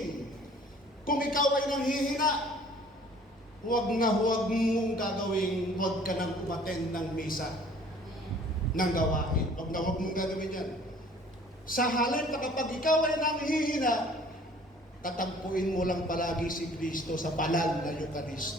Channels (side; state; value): both; normal; correlation 0.53